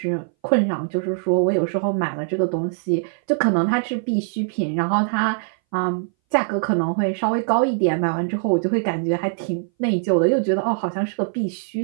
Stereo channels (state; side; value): silent; left; 61 dB below the other